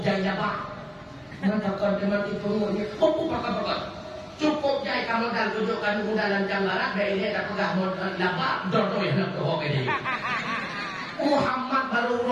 jaya bang. Maka mati pengurnya. Kau pakai. Cukup jaya kamu dah tunjukkan modalan janggaran. Dan ini dah pegah modal nabak. Dodoi nak kau ini. Muhammad baru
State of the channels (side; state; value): both; identical; correlation 1.00